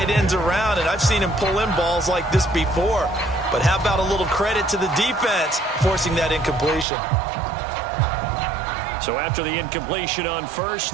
ends around, and I've seen him pull in balls like this before. But how about a little credit to the defense forcing that incompletion? So after the incompletion on first,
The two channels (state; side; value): drops out; left; at 6.9 s